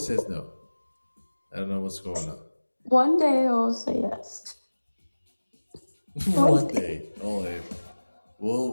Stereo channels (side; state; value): both; inverted; correlation -1.00